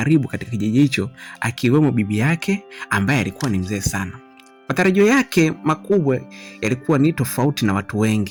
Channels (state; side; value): identical; both; correlation 1.00